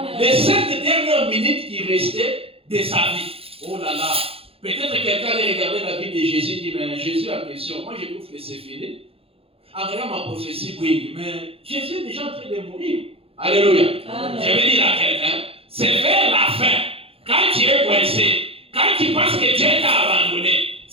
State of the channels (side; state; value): left; late; 0.27 ms